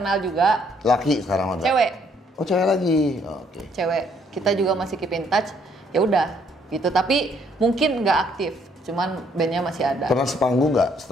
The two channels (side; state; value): both; normal; correlation 0.67